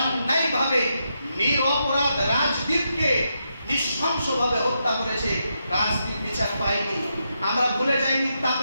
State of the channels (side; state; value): both; inverted; correlation -0.83